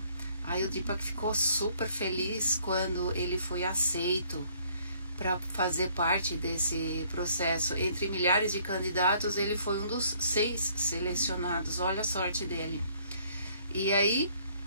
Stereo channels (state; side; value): inverted; both; correlation -0.62